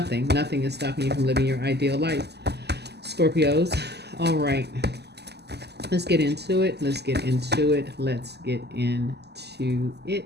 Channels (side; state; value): left; late; 0.49 ms